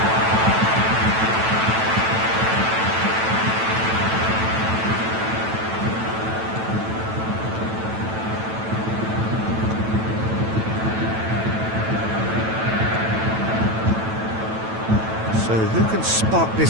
So who can spark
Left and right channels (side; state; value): left; late; 9.1 ms